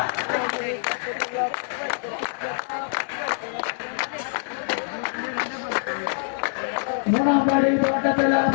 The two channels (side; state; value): right; silent; 62 dB below the other